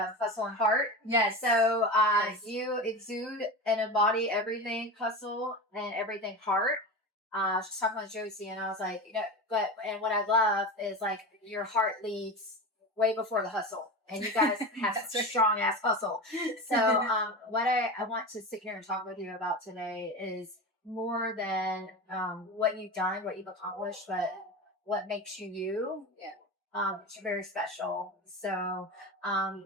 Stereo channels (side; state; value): both; normal; correlation 0.26